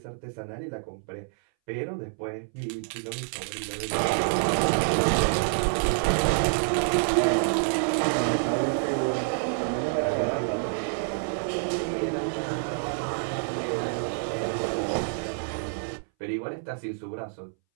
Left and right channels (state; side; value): silent; left; 60 dB below the other